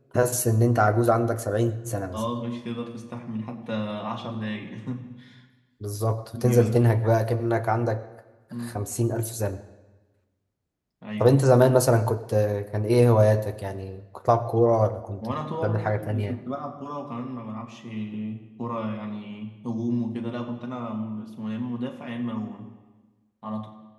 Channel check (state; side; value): identical; both; correlation 1.00